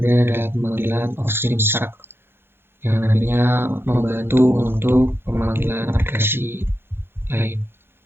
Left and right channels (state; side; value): late; left; 0.11 ms